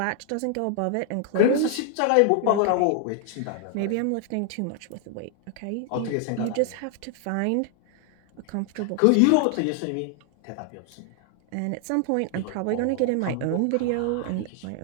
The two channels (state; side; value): different; both; correlation 0.00